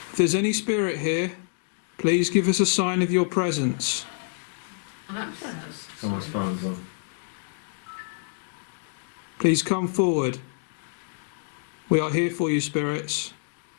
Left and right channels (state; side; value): silent; right; 60 dB below the other